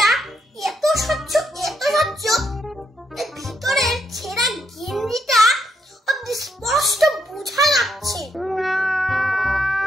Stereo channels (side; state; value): both; normal; correlation 0.78